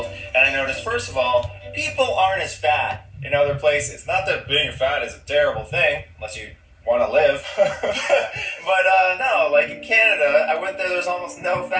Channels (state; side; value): identical; both; correlation 1.00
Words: and I noticed, first of all, people aren't as fat in other places. Not that being fat is a terrible thing, unless you want to live. But, no, like in Canada, I went there, there's almost no